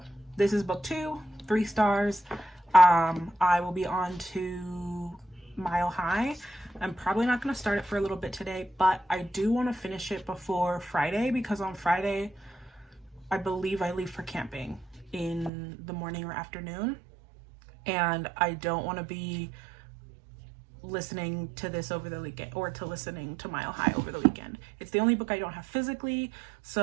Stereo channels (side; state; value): left; drops out; at 15.5 s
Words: this is book 2, 3 stars. I will be on to Mile High. I'm probably not going to start it for a little bit today, but I do want to finish it before Friday, because on Friday I believe I leave for camping in the morning or afternoon, and I don't want to be listening to this over the weekend, or to listening to Mile High over the weekend. It's the only book I don't have physically,